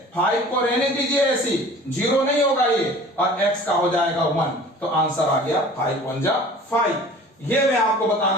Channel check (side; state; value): both; normal; correlation 0.45